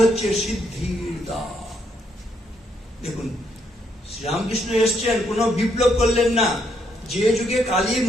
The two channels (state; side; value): normal; both; correlation 0.74